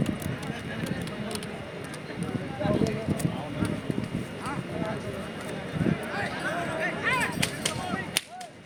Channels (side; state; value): both; identical; correlation 1.00